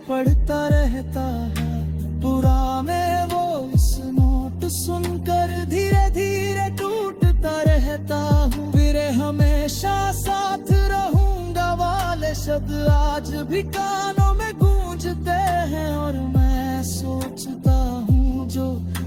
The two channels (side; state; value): both; identical; correlation 1.00